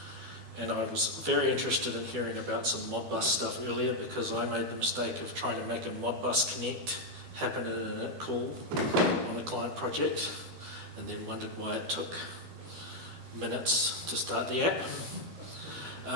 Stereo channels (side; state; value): left; late; 12 ms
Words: and I was very interested in hearing about some Modbus stuff earlier because I made the mistake of trying to make a Modbus connect happen in an init call on a client project, and then wondered why it took minutes to start the app.